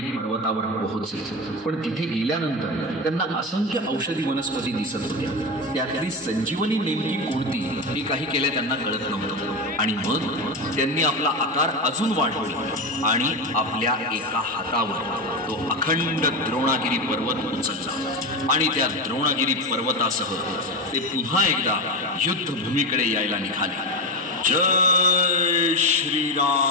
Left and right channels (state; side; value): normal; both; correlation 0.17